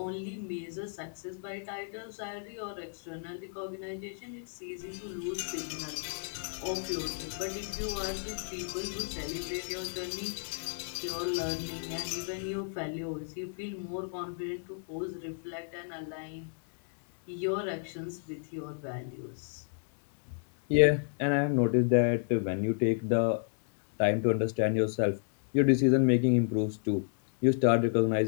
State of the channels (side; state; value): right; silent; digital silence